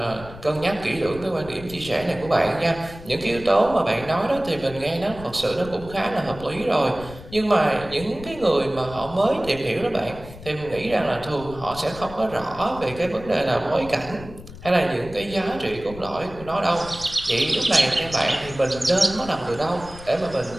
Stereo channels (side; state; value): left; noise; rumble, 15 dB below the sound